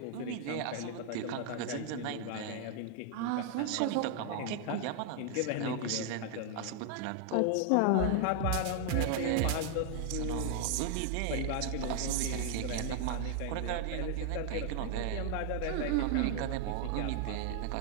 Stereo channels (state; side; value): different; both; correlation 0.00